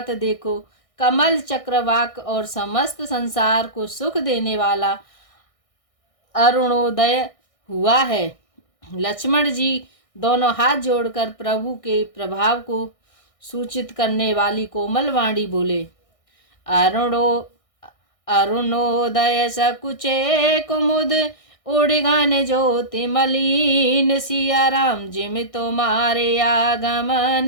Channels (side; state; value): right; late; 1.6 ms